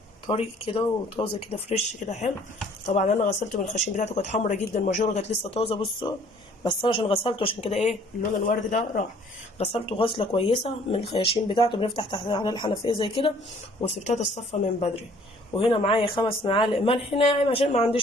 طري كده وطازه كده فريش كده حلو. طبعا انا غسلته من الخشين بتاعته، كانت حمرا جدا، الماجوره كانت لسه طازه. بصوا بس انا عشان غسلته عشان كده ايه اللون الورد ده راح. غسلته غسله كويسه من الخياشيم بتاعته، بنفتح تحت على الحنفيه زي كده، وسبتها تتصفى من بدري. وهنا معايا 5 معالق ملح ناعم عشان ما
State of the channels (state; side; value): normal; both; correlation 0.57